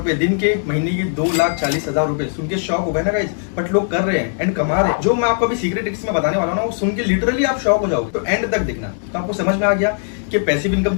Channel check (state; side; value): silent; right; 67 dB below the other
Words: दिन के, महीने के 2,40,000 रुपए। सुन के शॉक हो गए ना गाइस, बट लोग कर रहे हैं एंड कमा रहे हैं। जो मैं आपको अभी सीक्रेट ट्रिक्स में बताने वाला हूं ना, वो सुन के लिटरली आप शॉक हो जाओगे। तो एंड तक देखना, तो आपको समझ में आ गया कि पैसिव इनकम